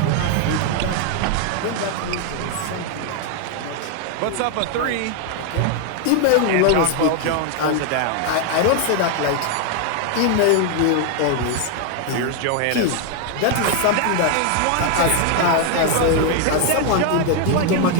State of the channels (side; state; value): both; different; correlation 0.01